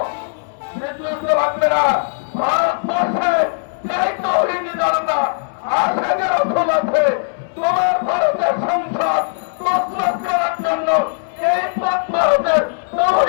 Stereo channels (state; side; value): silent; right; digital silence